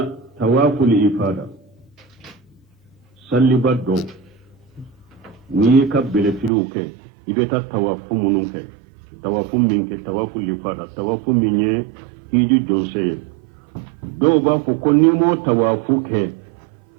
تواف الإفادة سلي بدو نيكا بلفلوك إبتا تواف منك تواف منك تواف الإفادة تواف مني إيجو جونسي دو بافوكو نيمو توافوك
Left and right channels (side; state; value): left; drops out; at 6.5 s